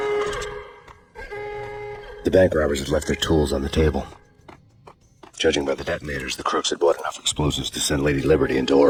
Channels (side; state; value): both; identical; correlation 1.00